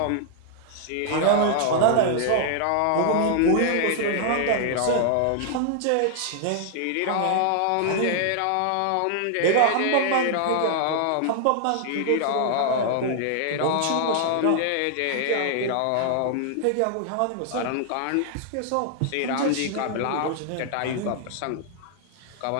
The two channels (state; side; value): different; both; correlation 0.00